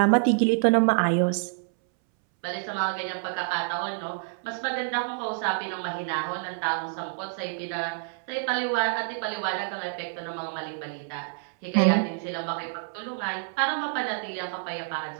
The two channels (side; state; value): left; silent; 60 dB below the other